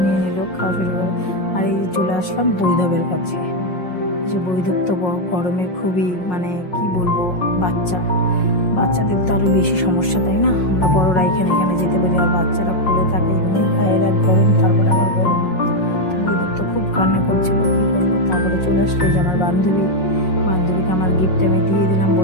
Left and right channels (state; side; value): late; right; 5.5 ms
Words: নিয়ে নিল, খাওয়া শুরু করে। আর এই চলে আসলাম বৈধবের কাছে। যে বৈধব তো গরমে খুবই, মানে কি বলবো, বাচ্চাদের তো আরো বেশি সমস্যা, তাই না? আমরা বড়রা এখানে যেতে পারি, আর বাচ্চারা খুলে থাকে, এমনি গায়ের এক গরম, তারপরে আবার গরম। বৈধব তো খুব কান্না করছিল, কি করবো। তারপরে চলে আসলো যে আমার বান্ধবীকে আমার গিফট আমি দিয়ে দিলাম,